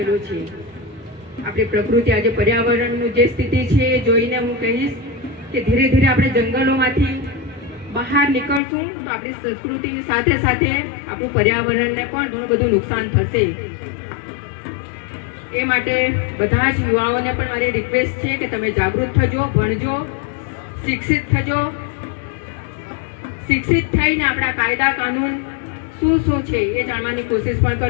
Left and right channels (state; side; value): drops out; right; at 8.6 s